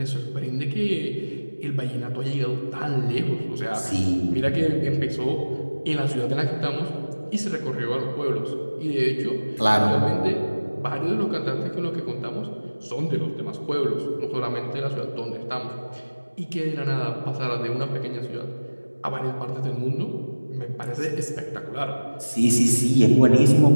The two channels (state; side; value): inverted; both; correlation -1.00